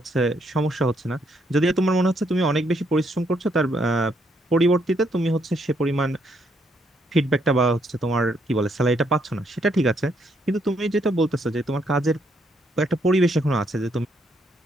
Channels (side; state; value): both; normal; correlation 0.73